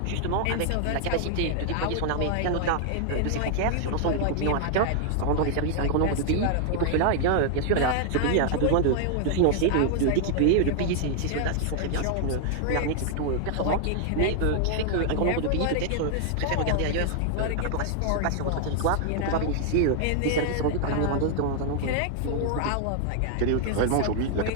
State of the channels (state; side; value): different; both; correlation 0.00